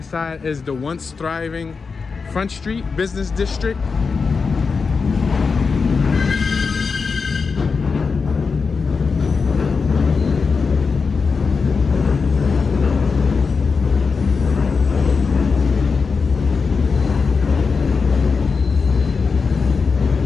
side is the once thriving Front Street Business District.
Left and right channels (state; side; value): quieter; right; 5.0 dB